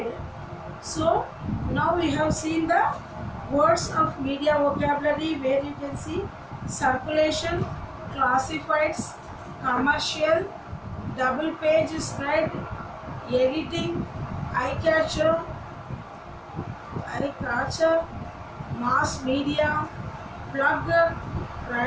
So now we have seen the words of media vocabulary, where you can see circulation, classifieds, commercial, double page spread, editing, eye catcher, mass media, plug,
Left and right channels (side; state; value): both; identical; correlation 1.00